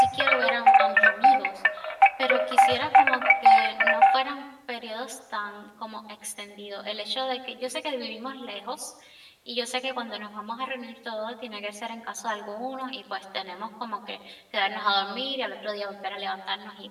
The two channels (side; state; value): both; identical; correlation 1.00